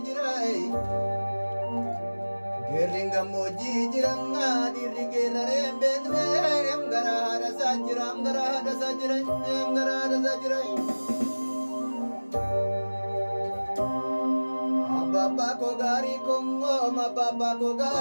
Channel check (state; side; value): inverted; both; correlation -1.00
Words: jirai geringa moji jiranga dirigera rembedre gara hada sajiram gara hada sajirai gara hada sajirai Bapa ko gari kongo ma papa ko